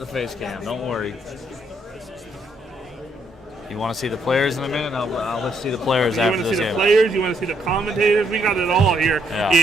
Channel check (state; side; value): normal; both; correlation 0.73